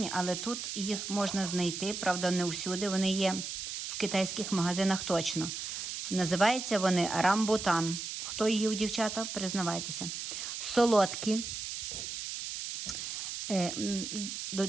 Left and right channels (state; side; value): noise; right; hiss, 5 dB below the sound